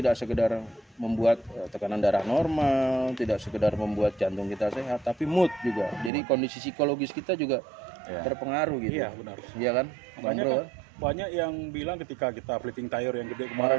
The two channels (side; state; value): left; drops out; at 6.1 s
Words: sekedar membuat tekanan darah normal, tidak sekedar membuat jantung kita sehat, tapi mood juga. Jadi kondisi psikologis kita juga Iya. terpengaruh gitu. Iya, benar. Iya kan? Bang Makanya Bro, kan banyak yang bilang ketika kita flipping tire yang gede